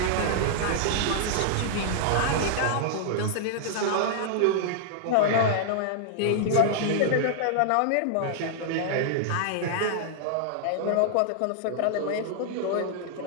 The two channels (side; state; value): both; different; correlation -0.01